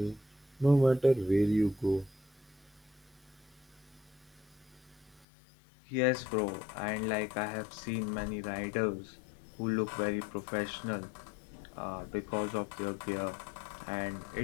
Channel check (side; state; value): right; drops out; at 5.2 s